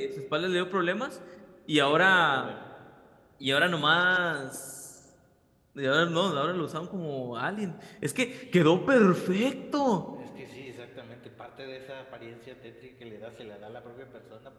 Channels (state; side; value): identical; both; correlation 1.00